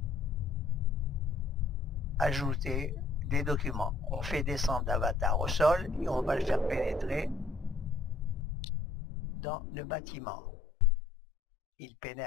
ajoutés des documents. On fait descendre l'avatar au sol et on va le faire pénétrer dans le bâtiment. Il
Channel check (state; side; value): drops out; right; at 8.4 s